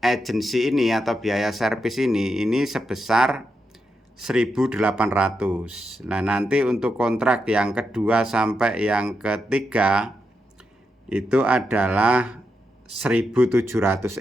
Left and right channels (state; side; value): normal; both; correlation 0.85